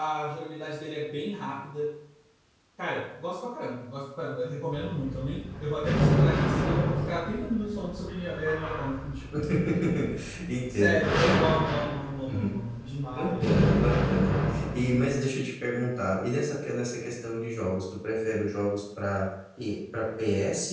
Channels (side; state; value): both; identical; correlation 1.00